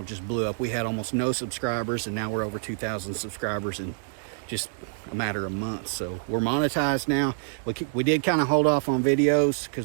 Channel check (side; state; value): left; silent; 60 dB below the other